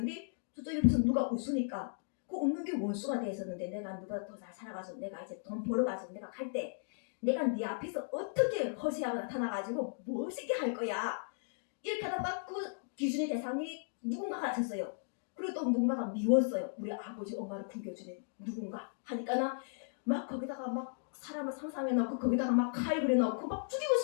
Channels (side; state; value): right; silent; digital silence